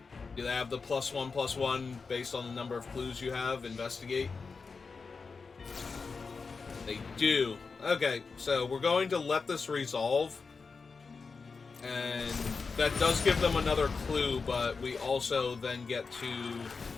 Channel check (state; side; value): quieter; right; 4.7 dB